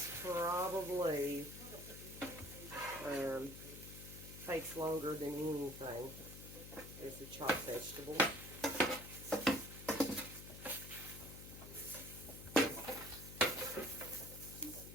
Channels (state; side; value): noise; left; hum, 12 dB below the sound